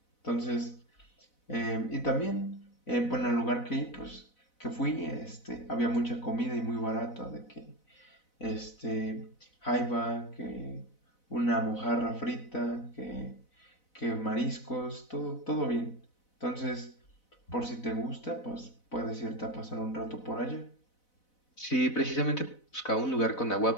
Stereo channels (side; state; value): right; late; 4.0 ms